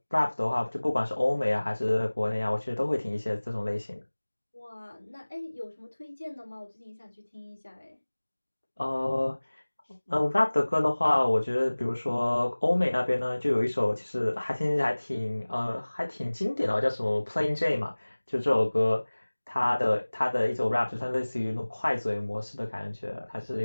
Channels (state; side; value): inverted; both; correlation -1.00